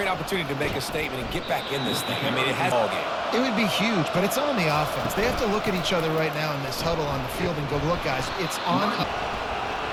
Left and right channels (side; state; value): both; identical; correlation 1.00